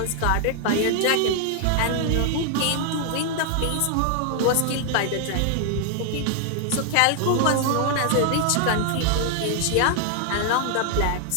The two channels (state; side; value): different; both; correlation 0.00